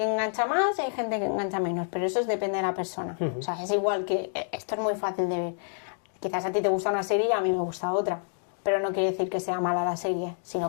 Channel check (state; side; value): silent; right; digital silence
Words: engancha más y hay gente que engancha menos, pero eso depende de la persona. O sea, es igual que, esto es muy fácil de ver. Quizás a ti te gusta una serie y a mí me gusta otra, pero no quiere decir que sea mala la serie,